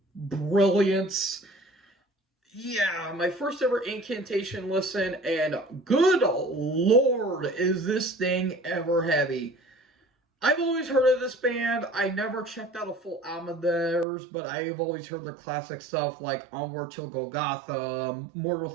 brilliance. Yeah, my first ever Incantation listen, and good lord, is this thing ever heavy. I've always heard of this band. I never checked out a full album of theirs, but I've always heard their classic stuff like Onward Till Golgotha, Mortal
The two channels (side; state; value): left; drops out; at 14.1 s